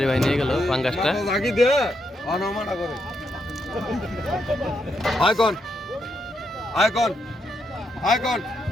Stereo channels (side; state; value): both; normal; correlation 0.80